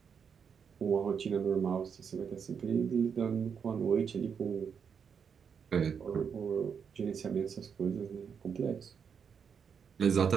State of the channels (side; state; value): left; quieter; 6.8 dB